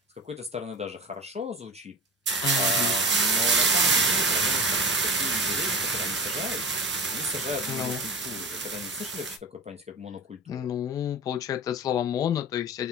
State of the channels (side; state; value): both; normal; correlation 0.32